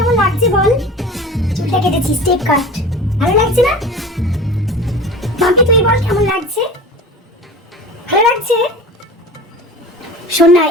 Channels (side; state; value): both; normal; correlation 0.36